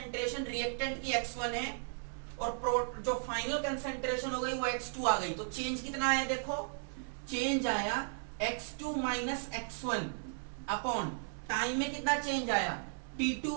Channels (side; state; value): left; silent; digital silence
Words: रिएक्टेंट की X1 है और जो फाइनल कंसंट्रेशन हो गई वो X2 आ गई। तो चेंज कितना आया देखो, चेंज आया X2 minus X1 upon time में कितना चेंज आया